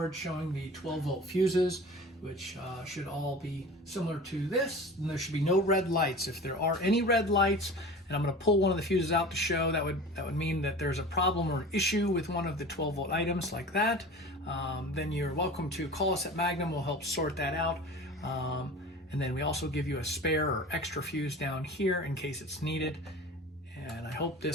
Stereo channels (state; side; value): normal; both; correlation 0.37